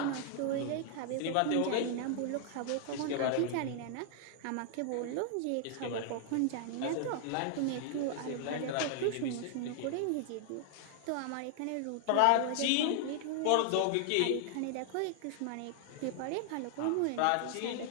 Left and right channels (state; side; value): different; both; correlation -0.01